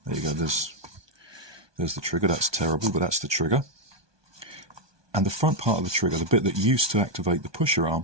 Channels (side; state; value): left; late; 1.2 ms